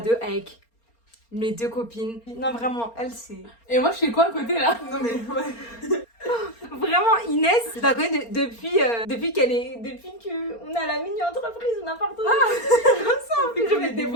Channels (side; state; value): right; late; 4.3 ms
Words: de avec mes 2 copines. Non, vraiment, elle, c'est. Et moi, je fais quoi à côté là? Non mais ouais. Vraiment, Inès, je la connais depuis qu'on est à la mini-entreprise ou n'importe quoi. Je mets des